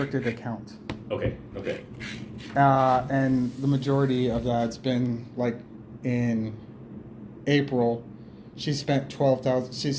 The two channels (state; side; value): identical; both; correlation 1.00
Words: account. Okay. And the majority of that's been like in April. She spent